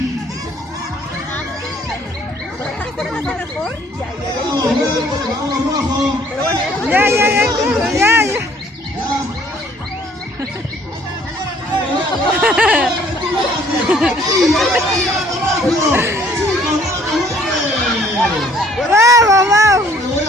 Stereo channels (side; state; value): both; normal; correlation 0.59